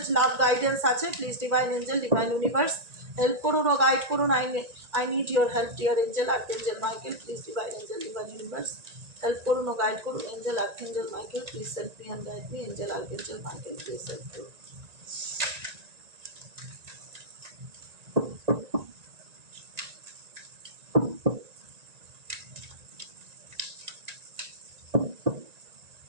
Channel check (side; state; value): left; late; 1.9 ms